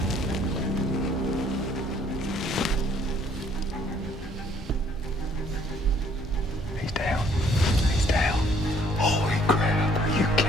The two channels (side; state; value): both; normal; correlation 0.62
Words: He's down. He's down. Holy crap, are you